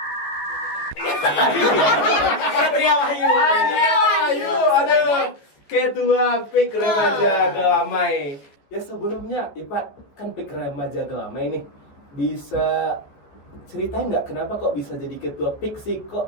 Patria Wahyu. Aduh. Ketua PIK Remaja Gelamai. Ya sebelumnya, Ipat, kan PIK Remaja Gelamai nih. Bisa ceritain nggak kenapa kok bisa jadi ketua PIK sih?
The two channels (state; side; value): late; right; 14 ms